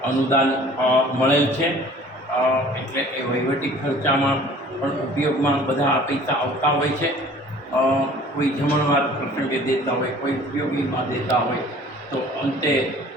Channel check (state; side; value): normal; both; correlation 0.49